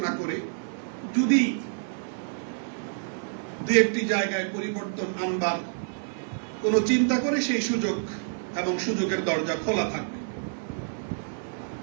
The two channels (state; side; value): silent; left; 59 dB below the other